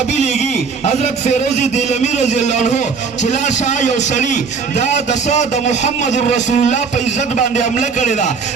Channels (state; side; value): quieter; left; 5.4 dB